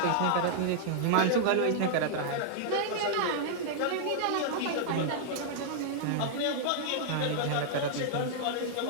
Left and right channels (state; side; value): different; both; correlation -0.01